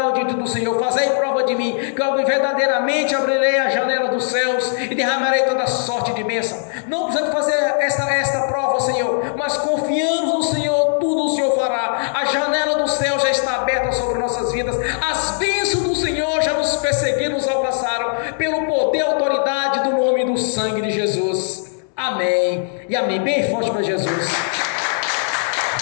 diante do Senhor. Fazei prova de mim, que eu verdadeiramente abrirei a janela dos céus e derramarei toda sorte de bênção. Não precisamos fazer esta prova, Senhor, mas confiamos no Senhor, tudo o Senhor fará. A janela do céu já está aberta sobre nossas vidas. As bênçãos do Senhor já nos perseguiram, nos alcançaram, pelo poder e autoridade do nome e do sangue de Jesus. Amém e amém. Bem forte para Jesus.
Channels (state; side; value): silent; right; digital silence